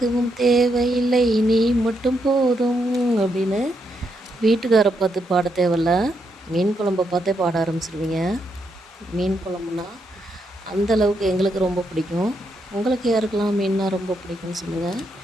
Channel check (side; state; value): both; normal; correlation 0.79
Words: தேவையில்லை நீ மட்டும் போதும் அப்படின்னு வீட்டுக்காரை பார்த்து பாட தேவையில்ல, மீன் குழம்பை பார்த்தே பாட ஆரம்பிச்சிருவீங்க. மீன் குழம்புனா அந்தளவுக்கு எங்களுக்கு ரொம்ப பிடிக்கும். உங்களுக்கு யாருக்கெல்லாம் மீன்னா ரொம்ப பிடிக்கும்னு சொல்லுங்கள்.